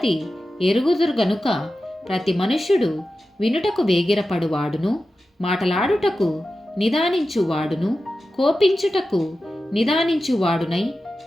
ఎరుగుదురు గనుక ప్రతి మనుష్యుడు వినుటకు వేగిరపడువాడును, మాటలాడుటకు నిదానించువాడును, కోపించుటకు నిదానించువాడునై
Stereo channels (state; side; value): normal; both; correlation 0.93